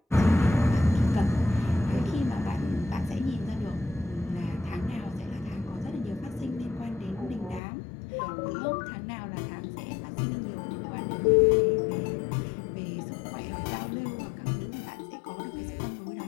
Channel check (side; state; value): right; drops out; at 7.6 s